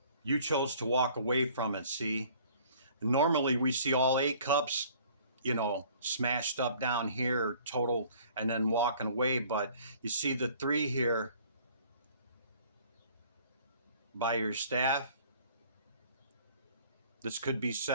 you chose to walk away from it. See, normally we see all 8 cups, you know, smashed up down here total, and then walking away, but you see the 3 here by your staff. This could be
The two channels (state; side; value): inverted; both; correlation -0.54